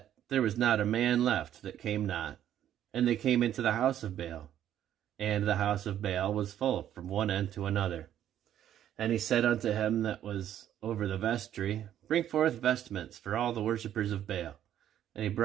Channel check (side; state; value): left; quieter; 11.0 dB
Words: there was not a man left that came not. And they came into the house of Baal, and the house of Baal was full from one end to another. And he said unto him that was over the vestry, Bring forth vestments for all the worshippers of Baal. And he